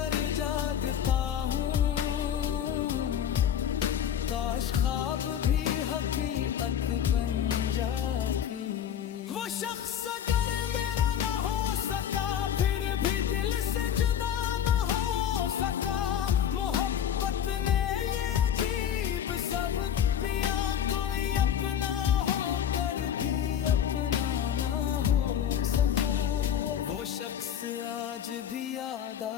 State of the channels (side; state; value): right; quieter; 9.4 dB